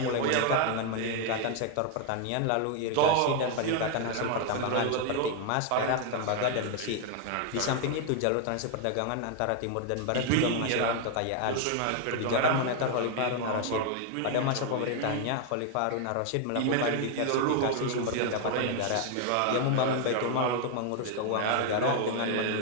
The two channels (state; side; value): different; both; correlation 0.00